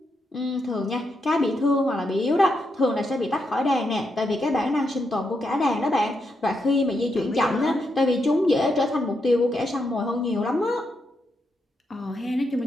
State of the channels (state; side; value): normal; both; correlation 0.82